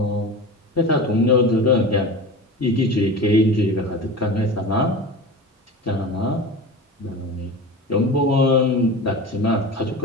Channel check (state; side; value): normal; both; correlation 0.31